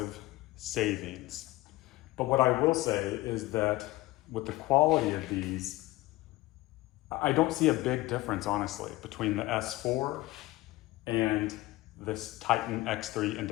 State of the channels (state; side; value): quieter; right; 18.8 dB